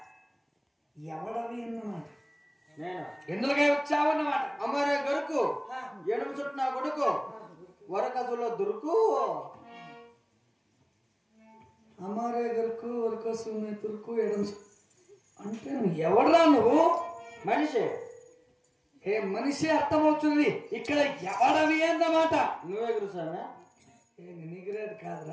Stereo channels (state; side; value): identical; both; correlation 1.00